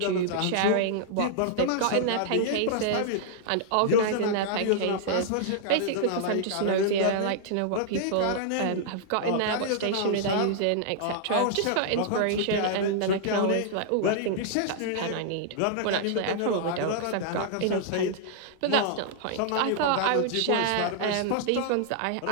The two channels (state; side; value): different; both; correlation -0.01